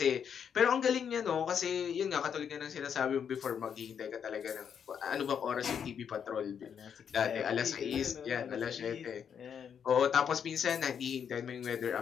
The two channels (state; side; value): quieter; right; 7.7 dB